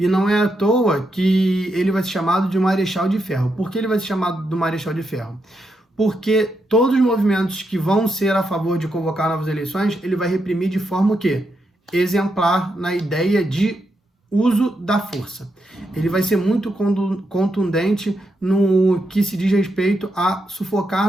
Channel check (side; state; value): both; normal; correlation 0.83